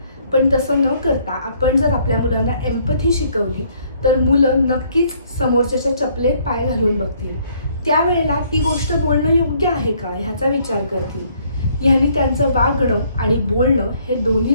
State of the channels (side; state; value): both; inverted; correlation -0.65